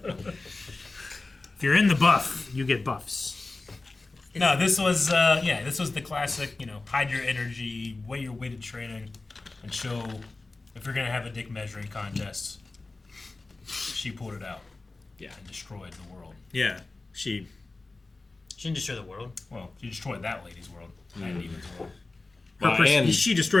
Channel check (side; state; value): right; quieter; 3.4 dB